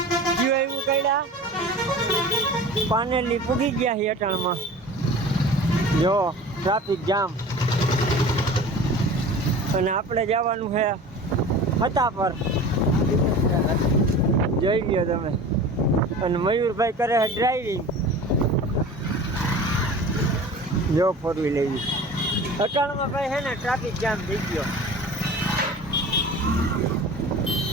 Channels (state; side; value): normal; both; correlation 0.38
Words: કયું એવું કર્યા પાનેલી પૂગી ગયા છે અટાણમાં. જો ટ્રાફિક જામ અને આપણે જવાનું છે હતા પર. જોઈ લ્યો તમે. અને મયુરભાઈ કરે છે ડ્રાઇવિંગ. જો ફોર વ્હીલ લેવી અટાણમાં ભાઈ છે ને ટ્રાફિક જામ થઈ ગયો.